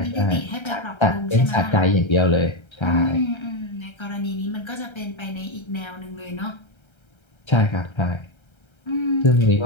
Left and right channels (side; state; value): right; late; 1.3 ms